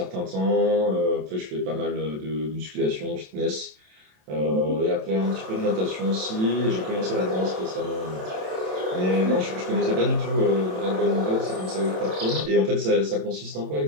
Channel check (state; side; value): late; left; 27 ms